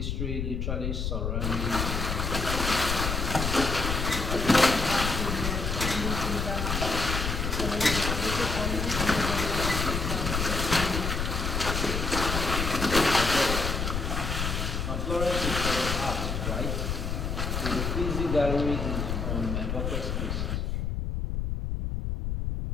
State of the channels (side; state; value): left; noise; rumble, 1 dB below the sound